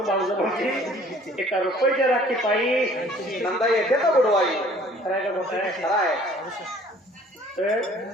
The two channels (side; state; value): both; normal; correlation 0.54